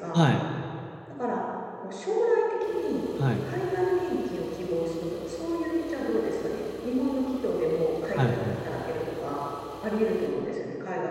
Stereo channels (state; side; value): identical; both; correlation 1.00